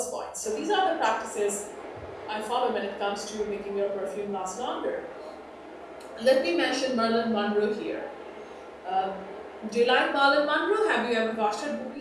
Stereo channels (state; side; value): identical; both; correlation 1.00